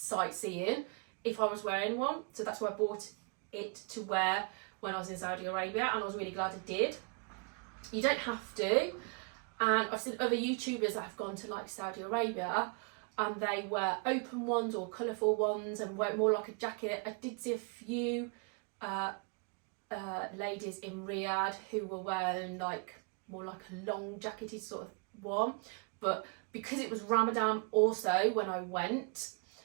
if I was wearing one. So that's why I bought it to wear when I was in Saudi Arabia, and I was really glad I did. You don't have to, and I've seen other YouTubers that have gone to like Saudi Arabia and they wear open ones or colourful ones and wear more like a jacket. I did see a few ladies in Riyadh who were wearing like more like a long jacketed sort of one, but because it was Ramadan also when I went,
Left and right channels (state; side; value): quieter; left; 35.4 dB